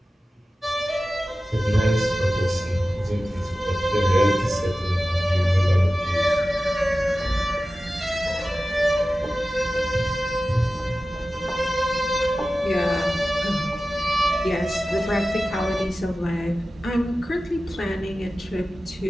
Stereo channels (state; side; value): normal; both; correlation 0.95